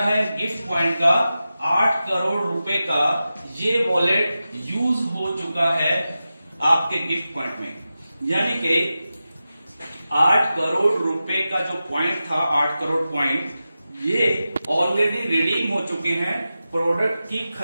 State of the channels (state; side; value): inverted; both; correlation -0.93